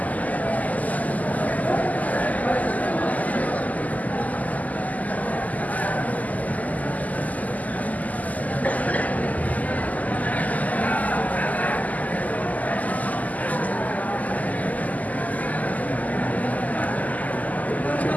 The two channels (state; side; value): late; right; 0.077 ms